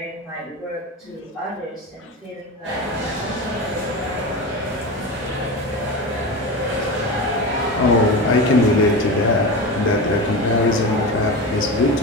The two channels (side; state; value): both; normal; correlation 0.24